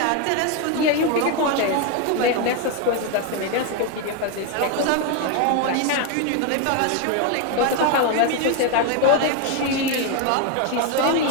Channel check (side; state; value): both; different; correlation 0.01